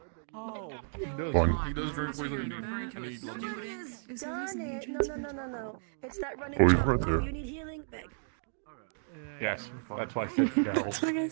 He does. Fun. He does drink poison and he loves it. Greg has done it. No. It's that running Oh, he's jump. right there. You need healing, Greg. Yes, that's why Fitz fell. Like I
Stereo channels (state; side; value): silent; left; digital silence